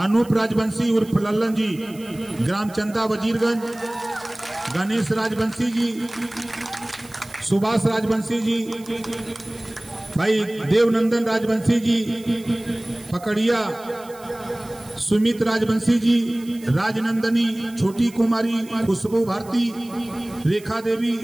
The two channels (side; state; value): right; noise; hiss, 22 dB below the sound